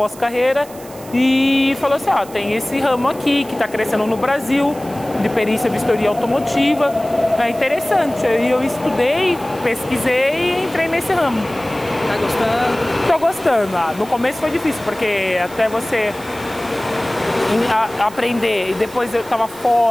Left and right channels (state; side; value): noise; right; hiss, 20 dB below the sound